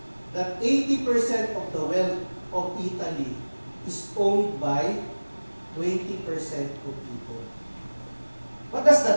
that 80% of the wealth of Italy is owned by 20% of people. What does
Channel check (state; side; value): inverted; both; correlation -1.00